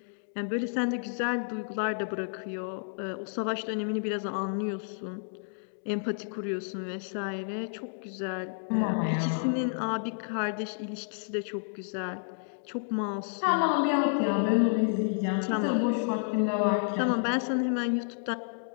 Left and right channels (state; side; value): silent; right; digital silence